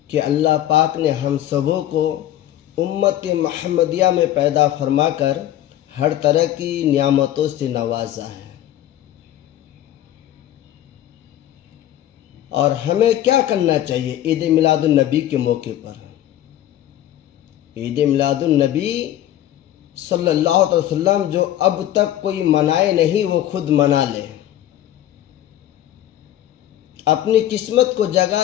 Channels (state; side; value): quieter; right; 12.5 dB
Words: کہ اللہ پاک نے ہم سبوں کو امت محمدیہ میں پیدا فرما کر ہر طرح کی نعمتوں سے نوازا ہے۔ اور ہمیں کیا کرنا چاہیے عید میلاد النبی کے موقع پر؟ عید میلاد النبی صلی اللہ علیہ وسلم جو اب تک کوئی منائے نہیں وہ خود منا لے، اپنی قسمت کو